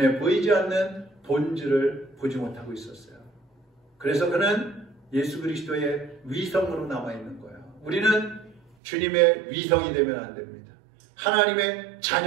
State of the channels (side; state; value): left; drops out; at 8.6 s